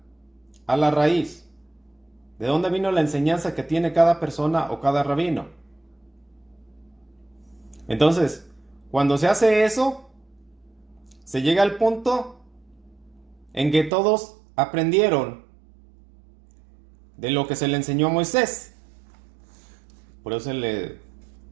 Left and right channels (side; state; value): left; drops out; at 13.9 s